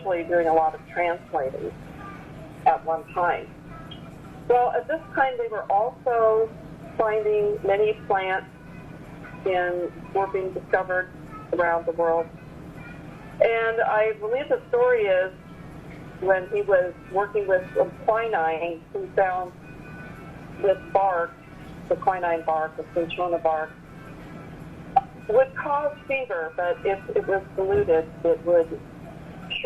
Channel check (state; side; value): identical; both; correlation 1.00